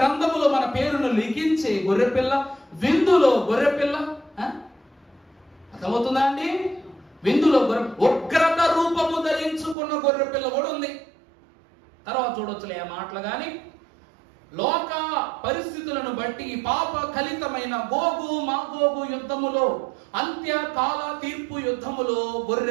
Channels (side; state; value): left; drops out; at 9.8 s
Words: మన పేరును లిఖించే గొర్రెపిల్ల, విందులో గొర్రెపిల్ల. అర్థమవుతుందా అండి? విందులో ఉగ్రత రూపము ధరించుకున్న గొర్రెపిల్ల కూడా ఉంది. తర్వాత చూడొచ్చులే ఆ మాటలు. కానీ లోక పరిస్థితులను బట్టి పాప కలితమైన గోగు మాగోగు యుద్ధములో, అంత్యకాల తీర్పు యుద్ధములో